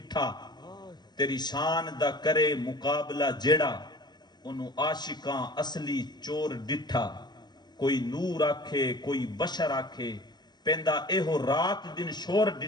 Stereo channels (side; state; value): right; late; 0.21 ms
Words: تیری شان دا کرے مقابلہ جیڑا، انہوں عاشقاں اصلی چور ڈٹھا، کوئی نور آکھے کوئی بشر آکھے، پیندا ایہو رات دن شور